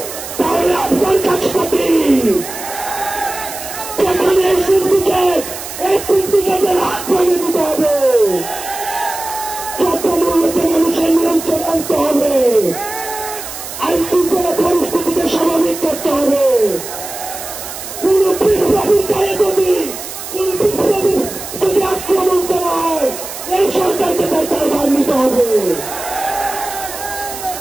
তাহলে আপনার কাজটা কি? যেখানে এই সিন্ডিকেটের হাত ভেঙে দিতে হবে, চট্টগ্রামকে মানুষের নিয়ন্ত্রণ আনতে হবে, আইন শৃঙ্খলা পরিস্থিতিকে স্বাভাবিক করতে হবে। কোন বিপ্লবীর গায়ে যদি আক্রমণ করা হয়, এই সরকারকে তার দায়ভার নিতে হবে।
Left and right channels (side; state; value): right; noise; hiss, 10 dB below the sound